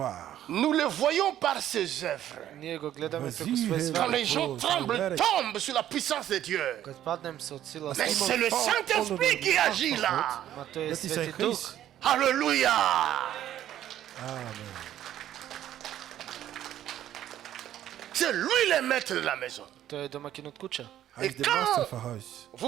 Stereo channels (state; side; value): quieter; left; 11.8 dB